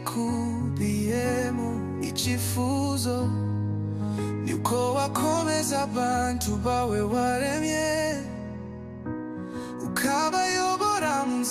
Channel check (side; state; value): both; identical; correlation 1.00